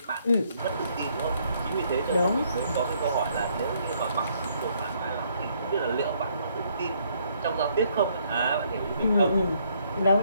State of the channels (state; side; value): inverted; both; correlation -0.69